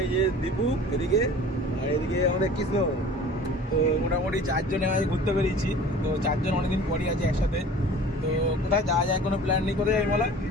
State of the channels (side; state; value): both; normal; correlation 0.44